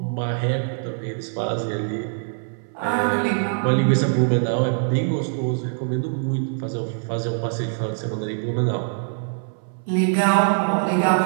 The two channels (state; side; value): silent; left; 63 dB below the other